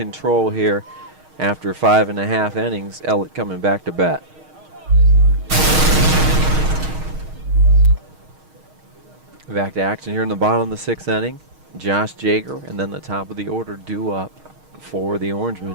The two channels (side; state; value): left; late; 6.4 ms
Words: here. After 5.5 innings, Ellet coming back to bat. Back to action here in the bottom of the 6th inning. Josh Jager and then the top of the order due up for the